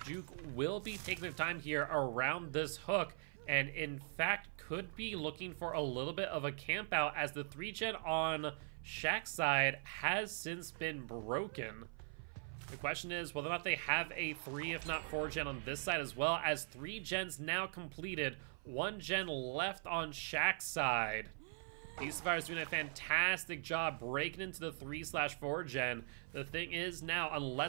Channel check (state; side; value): silent; left; 50 dB below the other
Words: Juke will be taking their time here around this hook, and in fact could be looking for a little bit of a camp out, as the 3-gen on Shaq's side has since been broken. The question is whether or not they have a 3, if not 4-gen on this side as well, as 3 gens now completed, 1 gen left on Shaq's side. These survivors doing a fantastic job breaking into the 3/4-gen. The thing is now,